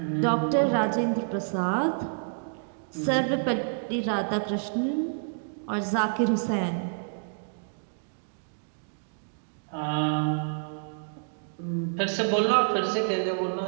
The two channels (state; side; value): silent; left; digital silence